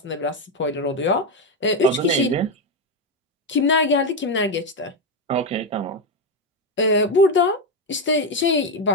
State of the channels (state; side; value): normal; both; correlation 0.08